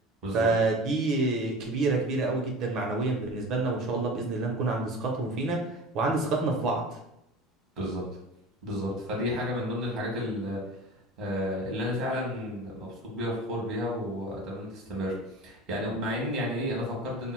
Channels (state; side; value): normal; both; correlation 0.36